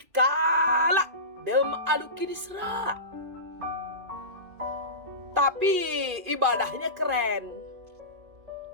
dem aluki disra. Tapi ibadahnya keren.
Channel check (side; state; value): left; late; 2.5 ms